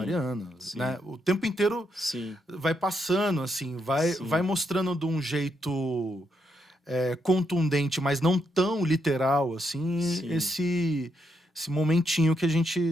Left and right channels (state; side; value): normal; both; correlation 0.79